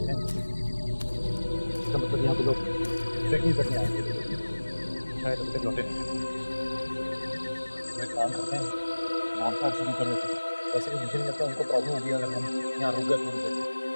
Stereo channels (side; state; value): both; inverted; correlation -1.00